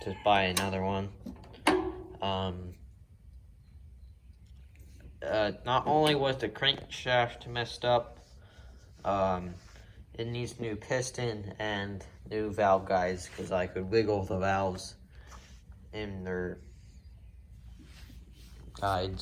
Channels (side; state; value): both; identical; correlation 1.00